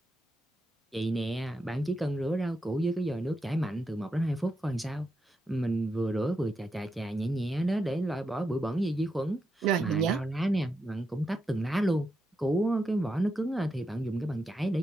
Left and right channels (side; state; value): both; normal; correlation 0.85